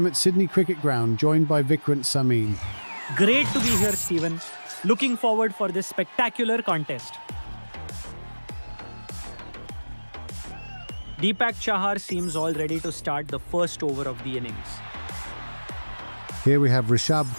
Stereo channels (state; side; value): inverted; both; correlation -1.00